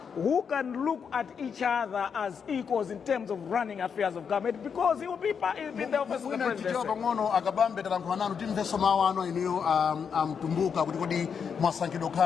who can look at each other as equals in terms of running affairs of government, because he will be in the office of the presidency. Kabambe talankhwana timveso mawano iniyo mtumbuka kuti kodi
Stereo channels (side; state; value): right; quieter; 6.7 dB